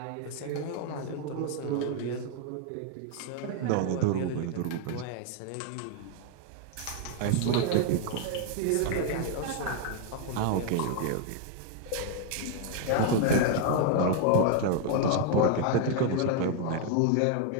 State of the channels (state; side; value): different; both; correlation 0.00